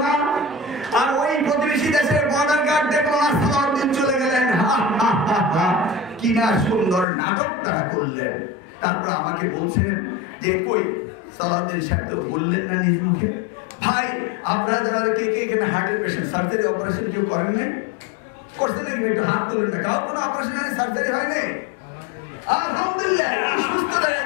না, আর ওই প্রতিবেশী দেশের বর্ডার গার্ড দেখলো না, সালাউদ্দিন চলে গেলেন। কি না সুন্দর নাটক তারা করলেন। তারপর আমাকে বলছেন যে কই সালাউদ্দিন সাহেব তো বললেন না নিজ মুখে। ভাই আপনারা যারা কে কে এখানে হার্টের পেশেন্ট, সার্জারি অপারেশন কেউ করেন নাই? করছে নাকি? একটু হাত তুলে না। কারো কোনো অপারেশন হয়নি, সার্জারি হয়নি? আলহামদুলিল্লাহ, সুস্থ দাঁড়িয়ে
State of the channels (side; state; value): right; drops out; at 7.1 s